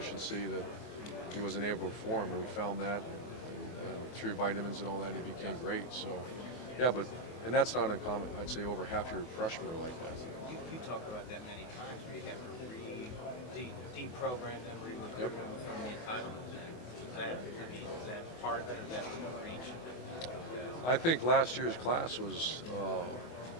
that he wasn't able to perform and we found that and through vitamins and all that he became great. So, yeah, and that's not uncommon. I'd say over half your freshmen are like that. You talked about that many times where you have to deprogram them, recruit Yep. them from the entitlement thing. Is that part of it? Is that within reach? I think last year's class was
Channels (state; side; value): late; right; 24 ms